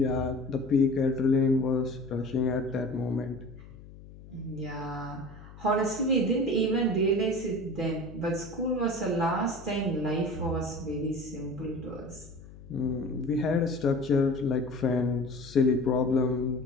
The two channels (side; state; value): left; noise; hum, 18 dB below the sound